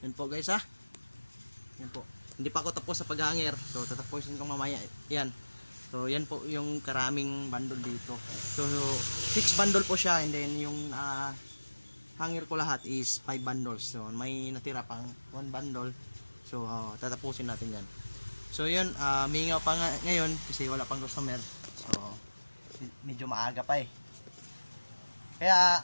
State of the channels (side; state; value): both; inverted; correlation -1.00